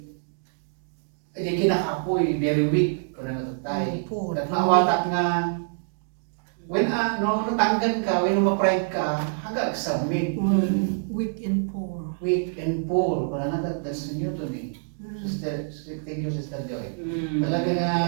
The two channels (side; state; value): left; silent; digital silence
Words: kinakapoy very weak ko na natatay at mawatak nga when no natanggan ka when ma-pride ka hanggang submit Weak and poor. weak and poor ko na that's new to me. Sister, thank you, Sister Joy. Talaga nga,